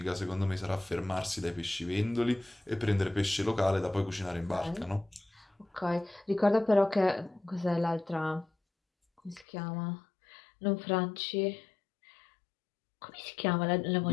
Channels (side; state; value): right; drops out; at 9.5 s